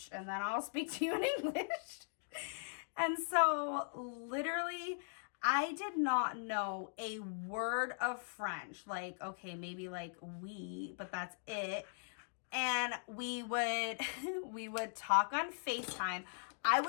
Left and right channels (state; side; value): silent; right; digital silence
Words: and then I'll speak to you in English. And so literally, I did not know a word of French. Like, okay, maybe like oui, but that's it. And we would talk on FaceTime. I